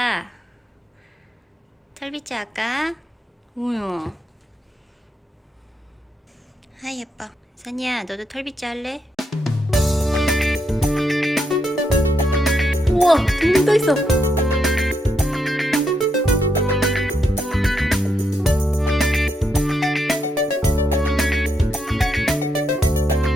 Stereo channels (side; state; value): both; normal; correlation 0.79